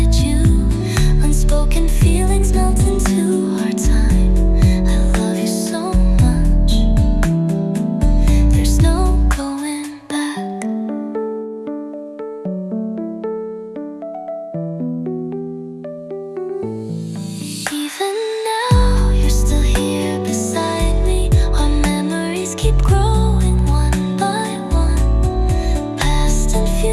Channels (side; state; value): both; identical; correlation 1.00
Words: you. Unspoken feelings melt into our time. I love you so much. There's no going back. Even now, you're still here beside me. Our memories keep growing one by one. Past and